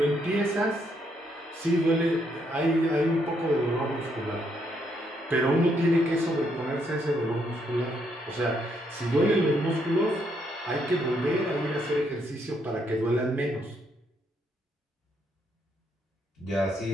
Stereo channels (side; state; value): both; normal; correlation 0.74